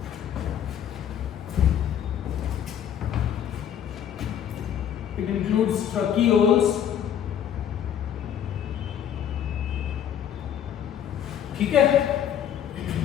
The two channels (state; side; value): quieter; right; 9.4 dB